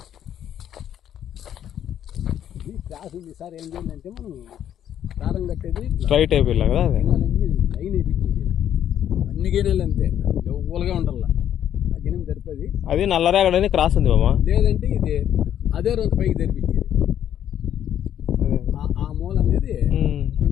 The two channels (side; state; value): right; quieter; 10.3 dB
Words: క్లాస్ ఉంది సార్ ఏం చేయాలంటే మనం దారం కట్టేది స్ట్రైట్ అయిపోయిలా కదా అదే లైన్ అయిపోయింది అన్ని గిన్నెలు అంతే ఊలుగా ఉండాల ఆ గిన్నె తెరిపేది అది నల్లరేగడని క్రాస్ ఉంది బామా లేదంటే ఇది అదే రోజు పైకి తెరిపించేది ఆ మూల అనేది